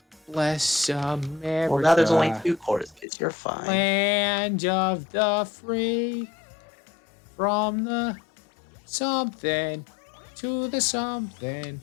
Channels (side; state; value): right; drops out; at 3.1 s